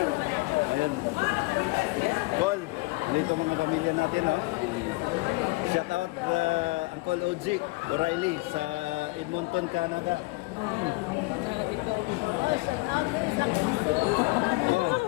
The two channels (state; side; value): quieter; right; 24.2 dB